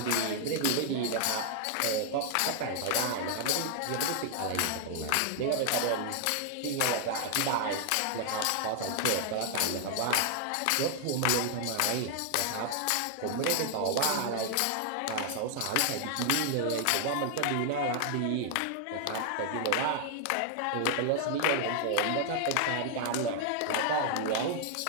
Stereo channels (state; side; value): different; both; correlation 0.00